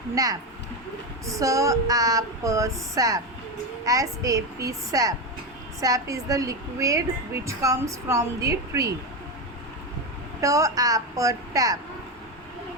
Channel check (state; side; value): normal; both; correlation 0.14